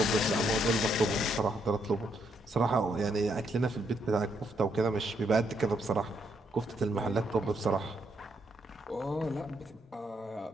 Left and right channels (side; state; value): both; normal; correlation 0.75